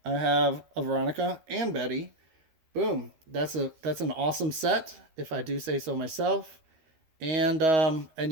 I have a Veronica and Betty. Boom. That's an awesome set, if I do say so myself. And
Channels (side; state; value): left; late; 13 ms